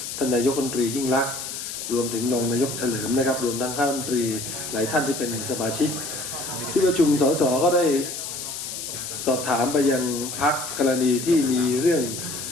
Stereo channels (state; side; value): noise; left; hiss, 7 dB below the sound